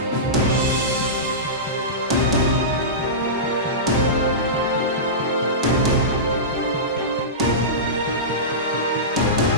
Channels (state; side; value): normal; both; correlation -0.18